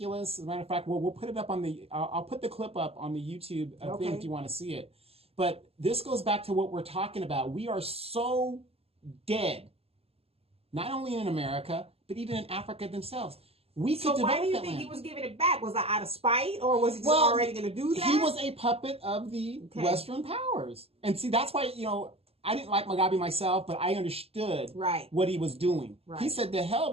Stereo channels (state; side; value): late; left; 0.29 ms